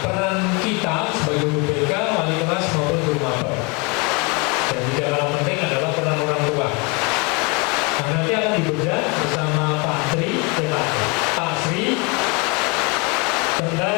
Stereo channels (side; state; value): right; quieter; 30.1 dB